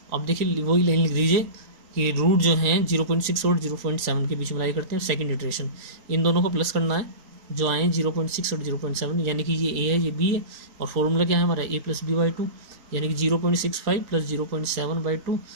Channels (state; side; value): late; left; 3.9 ms